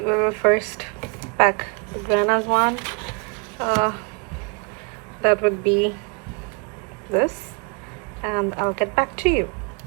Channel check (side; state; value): left; quieter; 34.7 dB